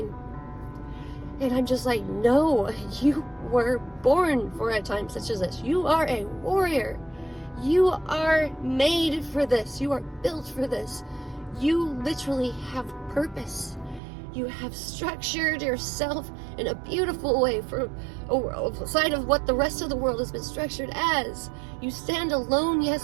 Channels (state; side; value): drops out; left; at 14.0 s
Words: And I'm just like, no, you were born for a time such as this. You are a warrior. You are made for this. You are built for this. You literally have purpose. You have structured yourself in a beautiful way for aside of what the rest of the world has been structured as. You stand alone,